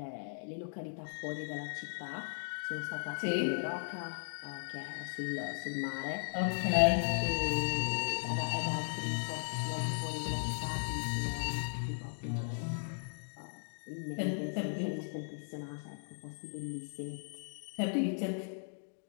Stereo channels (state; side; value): silent; right; digital silence